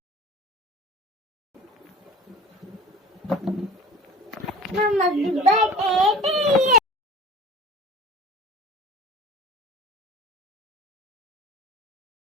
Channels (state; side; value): normal; both; correlation 0.39